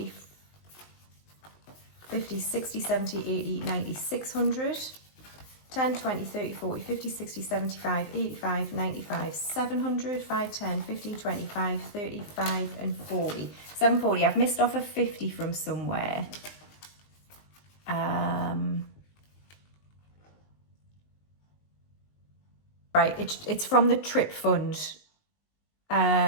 50, 60, 70, 80, 90, 600. 10, 20, 30, 40, 50, 60, 75, 85, 95, 700, 5, 10, 15, 25, 35 and 40. 740. I've missed off a 50 from somewhere. Right, it's from the trip fund,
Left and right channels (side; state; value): right; late; 19 ms